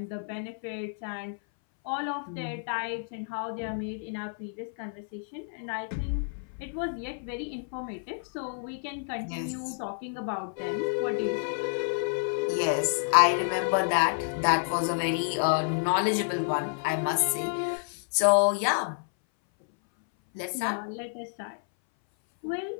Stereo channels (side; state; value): right; silent; 58 dB below the other